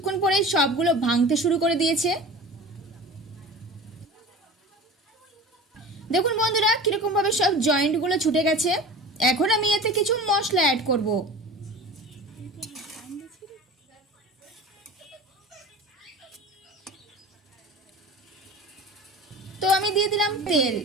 পরে সবগুলো ভাঙতে শুরু করে দিয়েছে। দেখুন বন্ধুরা কিরকম ভাবে সব জয়েন্টগুলো ছুটে গেছে। এখন আমি এতে কিছু মশলা অ্যাড করব। তো আমি দিয়ে দিলাম তেল,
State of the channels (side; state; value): both; normal; correlation 0.36